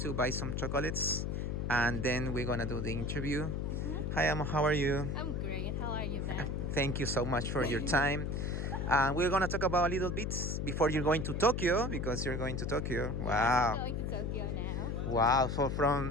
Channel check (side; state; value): left; noise; hum, 1 dB below the sound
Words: buy some chocolates, and then we're gonna do the interview. Hi, Amo. How are you? I'm great. How are you, Ben? Thank you so much for your time. We're gonna talk about a little bit before you're going to Tokyo, because you're going to Tokyo. Wow. I'm going to Tokyo now. Wow. So